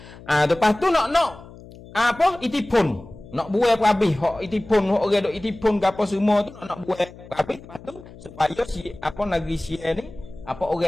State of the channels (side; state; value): left; noise; hum, 19 dB below the sound